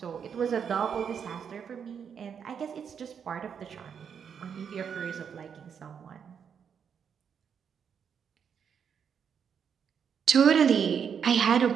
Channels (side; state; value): left; quieter; 7.3 dB